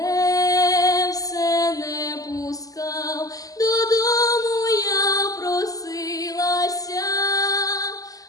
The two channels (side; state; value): right; late; 0.17 ms